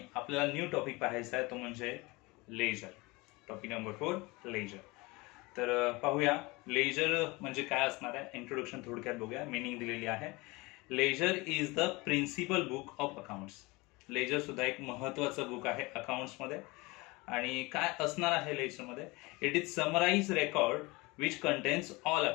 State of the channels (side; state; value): right; quieter; 23.9 dB